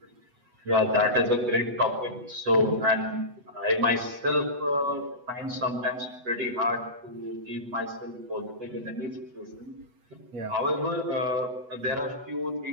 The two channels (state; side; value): late; left; 8.1 ms